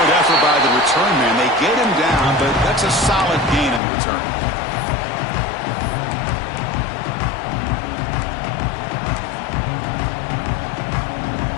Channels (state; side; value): drops out; right; at 3.8 s